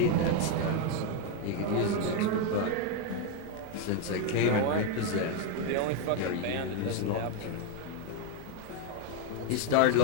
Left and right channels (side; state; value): both; different; correlation 0.01